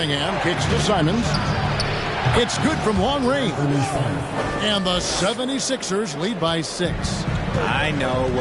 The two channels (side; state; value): both; identical; correlation 1.00